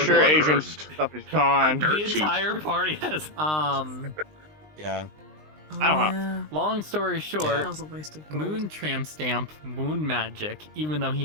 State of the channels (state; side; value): late; left; 20 ms